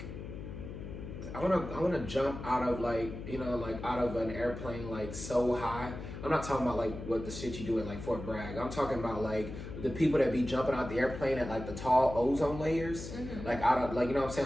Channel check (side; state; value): left; noise; hum, 9 dB below the sound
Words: I want to jump out of out of an airplane like so high. I'm not talking about like what the shit you do at like Fort Bragg. I'm talking about like the people that be jumping out the airplane at like the tall ozone layers, like out of like you know what I'm